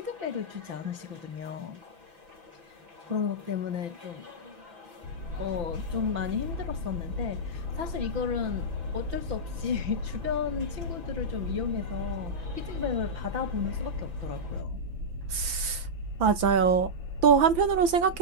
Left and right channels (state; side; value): late; left; 5.9 ms